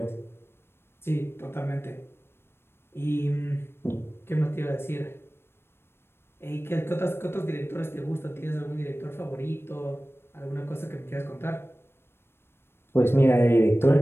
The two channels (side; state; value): right; late; 0.12 ms